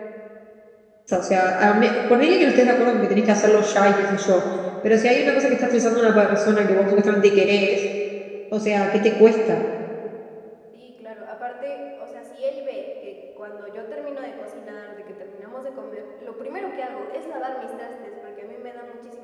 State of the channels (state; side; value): identical; both; correlation 1.00